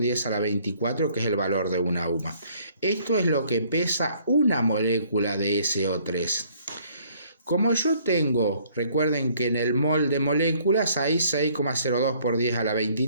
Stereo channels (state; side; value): inverted; both; correlation -0.62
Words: a la 24, que es el valor de una UMA. Esto es lo que pesa una molécula de SO3. Como yo tengo, recuerden que en el mol de moléculas hay 6,02 por 10 a la